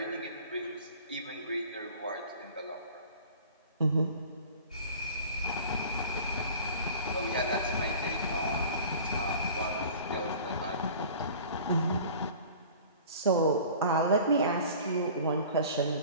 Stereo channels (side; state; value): both; inverted; correlation -0.43